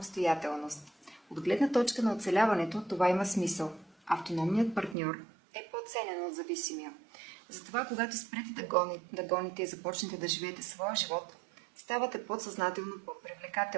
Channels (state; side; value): drops out; left; at 5.0 s